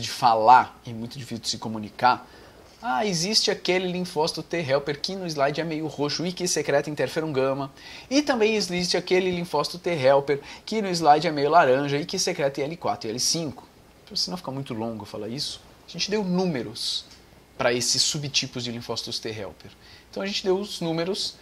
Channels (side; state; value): both; identical; correlation 1.00